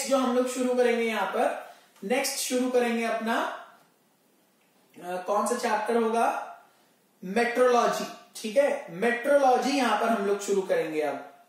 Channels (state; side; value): identical; both; correlation 1.00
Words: जो हम लोग शुरू करेंगे यहां पर, नेक्स्ट शुरू करेंगे अपना कौन सा चैप्टर होगा, मेट्रोलॉजी. ठीक है, मेट्रोलॉजी यहां पर हम लोग शुरू करेंगे अब.